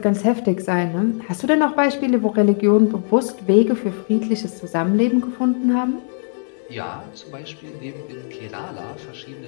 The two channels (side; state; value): right; silent; 65 dB below the other